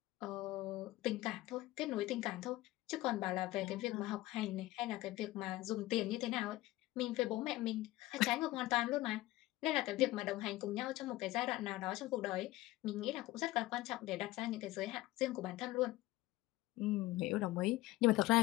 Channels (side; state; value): right; quieter; 17.7 dB